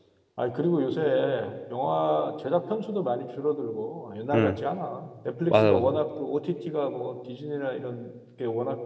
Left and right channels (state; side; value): identical; both; correlation 1.00